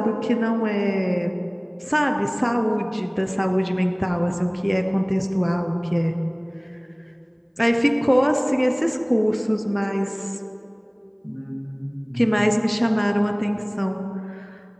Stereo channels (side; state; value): both; identical; correlation 1.00